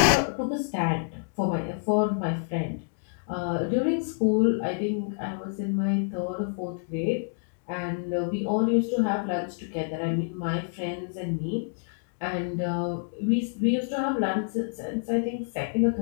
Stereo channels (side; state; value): right; silent; digital silence